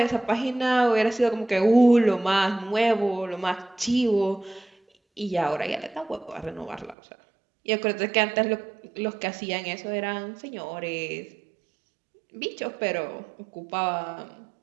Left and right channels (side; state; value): left; drops out; at 7.0 s